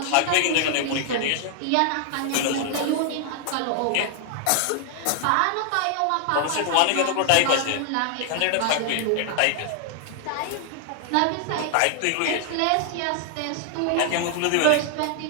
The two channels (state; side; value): different; both; correlation 0.00